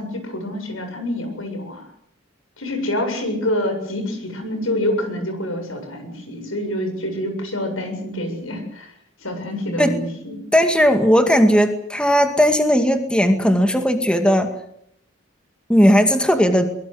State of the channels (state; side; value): normal; both; correlation 0.73